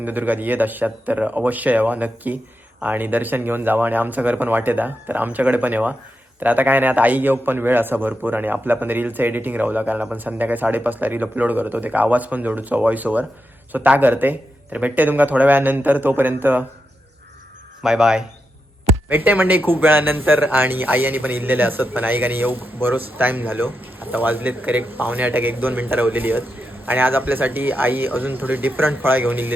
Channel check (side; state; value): both; normal; correlation 0.87